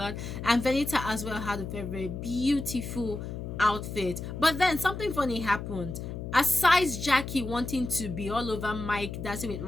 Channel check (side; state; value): left; noise; hum, 7 dB below the sound